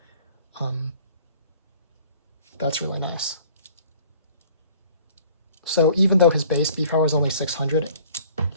that's really nice. So even though his base B power is only 600,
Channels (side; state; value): both; inverted; correlation -0.52